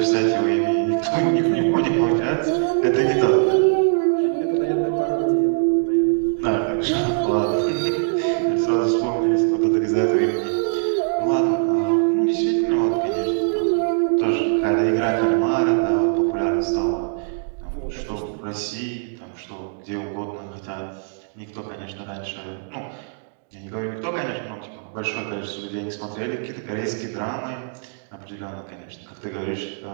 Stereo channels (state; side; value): silent; left; digital silence